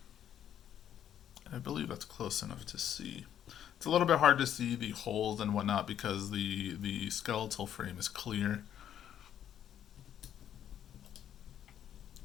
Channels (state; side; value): quieter; right; 10.1 dB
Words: I believe that's close enough to see. It's a little bit hard to see the holes and whatnot because the skeletal frame is clear.